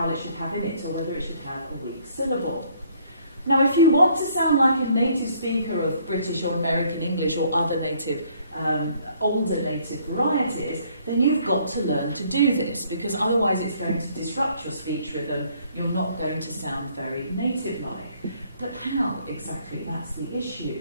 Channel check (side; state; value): both; inverted; correlation -0.63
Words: it should have in it, or whether it should have a weak syllable. Now, if you want to sound like a native speaker of British or American English or other native, older native varieties, then you've got to learn to do this, because otherwise it's going to disrupt your speech rhythm. You're not going to sound very native-like. But how exactly? That's the